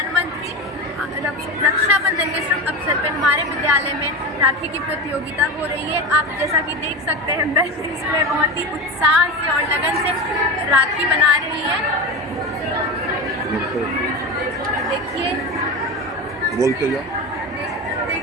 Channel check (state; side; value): normal; both; correlation 0.23